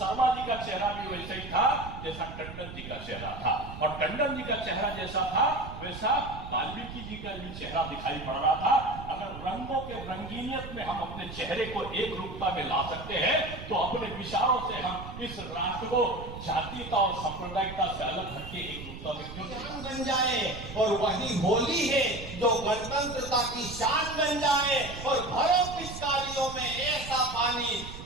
जी का चेहरा भी वैसा ही था जैसा टंडन जी का चेहरा था, और टंडन जी का चेहरा जैसा था वैसा वाल्मीकि जी का भी चेहरा दिखाई पड़ रहा था। अगर रंगों के रंगीनियत में हम अपने चेहरे को एक रूपता में ला सकते हैं, तो अपने विचारों से हम इस राष्ट्र को जातीयता और सांप्रदायिकता से अलग हटके एक रूपता में क्यों शान बन जाए। और वही होली है जो गणतंत्रता की शान बन जाए। और भरो पिचकारियों में ऐसा पानी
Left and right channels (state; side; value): noise; right; rumble, 11 dB below the sound